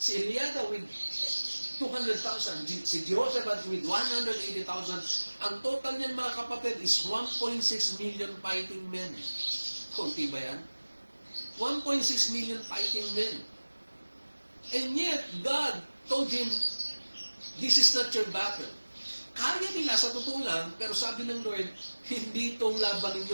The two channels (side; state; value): both; inverted; correlation -1.00